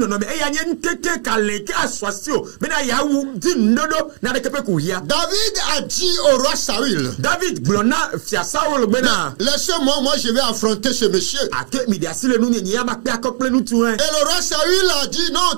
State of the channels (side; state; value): left; silent; 67 dB below the other